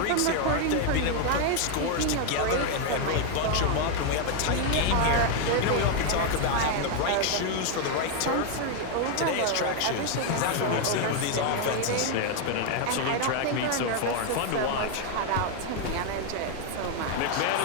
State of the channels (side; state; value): both; different; correlation 0.01